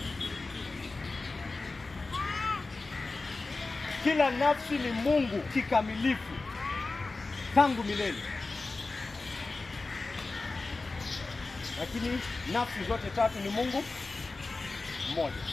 Kila nafsi ni Mungu kikamilifu tangu milele. Lakini nafsi zote tatu ni Mungu mmoja.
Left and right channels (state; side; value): quieter; right; 3.6 dB